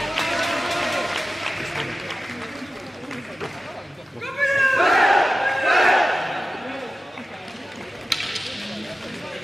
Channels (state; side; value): normal; both; correlation 0.94